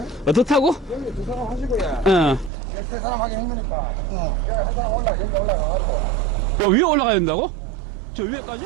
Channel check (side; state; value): left; drops out; at 2.5 s